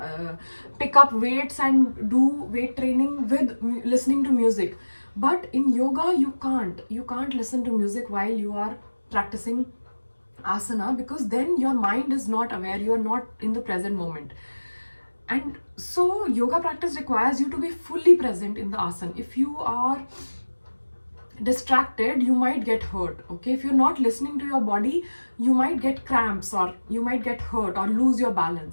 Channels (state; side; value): inverted; both; correlation -1.00